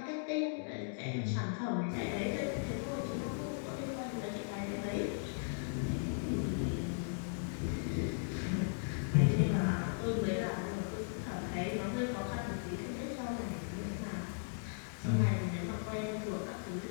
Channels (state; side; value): silent; right; digital silence